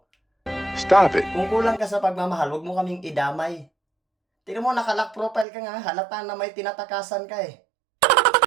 Stop it. Kung kulang ka sa pagmamahal, huwag mo kaming idamay. Tingnan mo, nakalock profile ka nga, halata na may tinatakasan ka eh.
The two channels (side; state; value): left; drops out; at 5.5 s